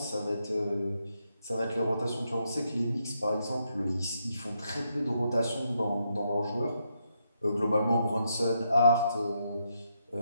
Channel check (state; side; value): inverted; both; correlation -0.80